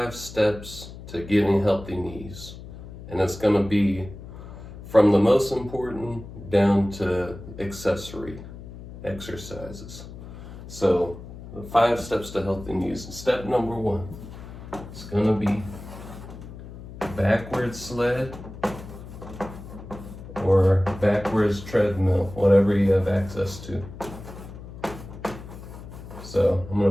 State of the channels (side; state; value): left; noise; hum, 14 dB below the sound